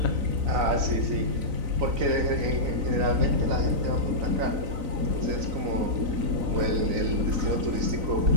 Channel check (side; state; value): left; late; 3.9 ms